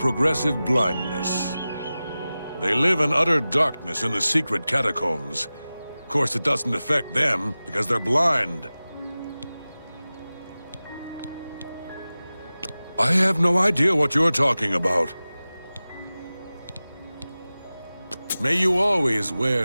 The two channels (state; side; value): inverted; both; correlation -0.96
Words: blindness. They live in utter darkness in the secret catacombs. Of course, it doesn't affect them because they're blind. I have no idea what you're talking about. May you always